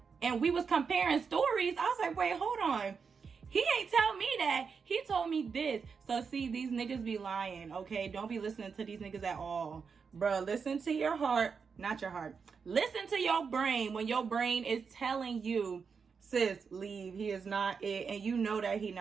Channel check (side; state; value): left; quieter; 5.7 dB